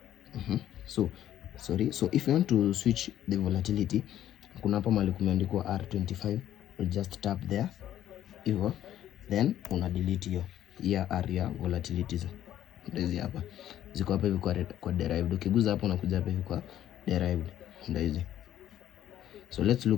So if you want to switch the volatility, kuna hapa mahali kumeandikwa R25, we just tap there hivyo, then una delete hiyo area volatilities. Ndio hapa ziko hapa hivi kwa derived. Ukiguza hapo unakuja hapa hivi kwa derived, ndio hizi. So let's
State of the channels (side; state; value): right; quieter; 11.7 dB